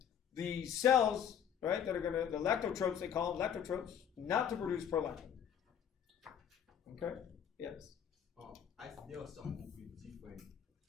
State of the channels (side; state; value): right; quieter; 8.6 dB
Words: the cells, right, that are going to, the lactotropes, they call them lactotropes, not to produce prolactin. Okay? Yes. There are some with different